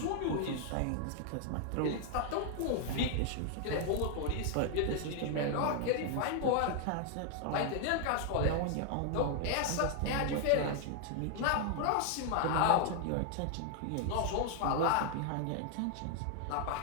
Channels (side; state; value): both; different; correlation 0.00